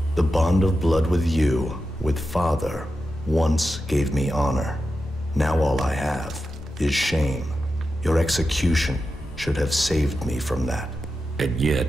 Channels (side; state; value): both; normal; correlation 0.90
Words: The bond of blood with you, with Father, once gave me honor. Now all I have is shame. Your execution should have saved me from that. And